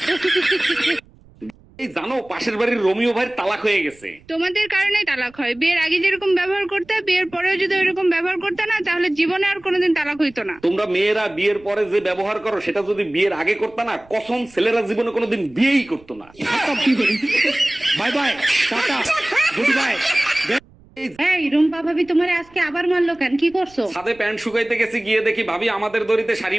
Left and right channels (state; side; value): noise; right; rumble, 27 dB below the sound